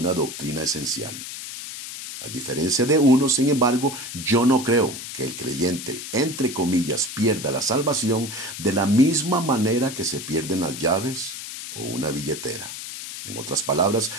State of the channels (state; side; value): noise; left; hiss, 9 dB below the sound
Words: doctrina esencial. A diferencia de uno, sin embargo, yo no creo que el creyente, entre comillas, pierda la salvación de la misma manera que se pierden las llaves o una billetera. En otras palabras,